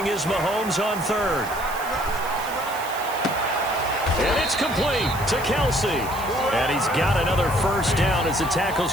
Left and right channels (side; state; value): right; noise; hiss, 14 dB below the sound